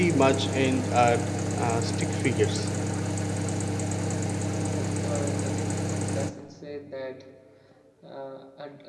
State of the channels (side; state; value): both; identical; correlation 1.00